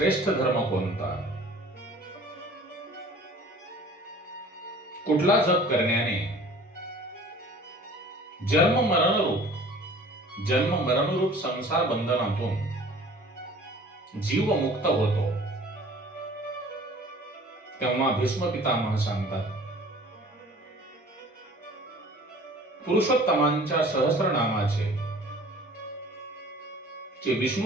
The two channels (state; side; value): normal; both; correlation 0.47